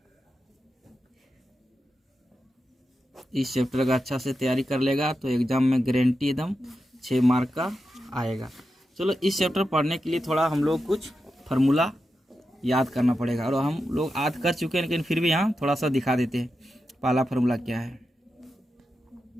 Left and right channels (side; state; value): both; normal; correlation 0.89